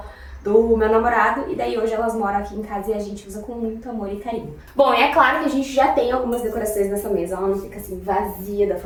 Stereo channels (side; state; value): both; identical; correlation 1.00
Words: do meu namorado, e daí hoje elas moram aqui em casa e a gente usa com muito amor e carinho. Bom, e é claro que a gente já tem algumas decorações nessa mesa, ela não fica assim vazia da